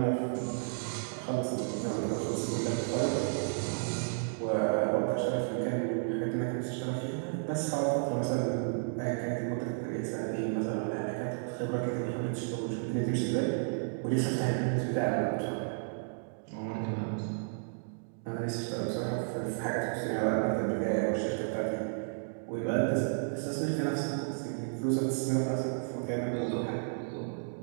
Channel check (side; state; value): left; silent; digital silence